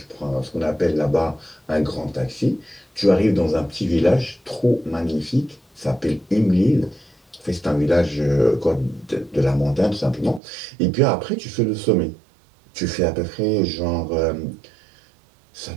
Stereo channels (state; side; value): drops out; left; at 10.4 s